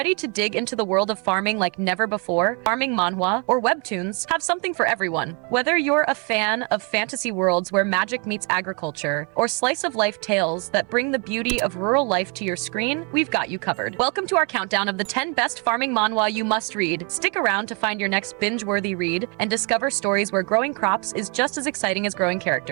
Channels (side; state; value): left; quieter; 34.2 dB